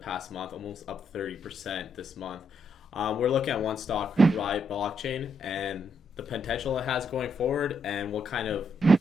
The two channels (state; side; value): normal; both; correlation 0.77